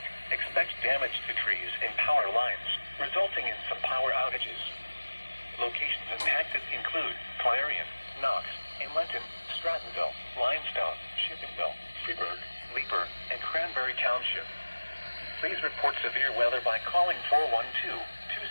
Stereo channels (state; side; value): inverted; both; correlation -1.00